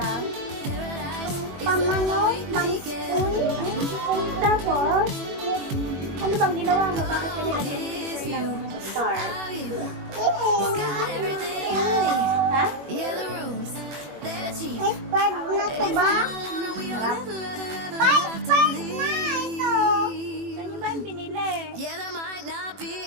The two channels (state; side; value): late; left; 21 ms